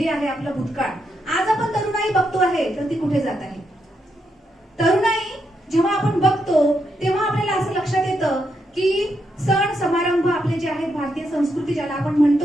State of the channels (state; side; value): normal; both; correlation 0.81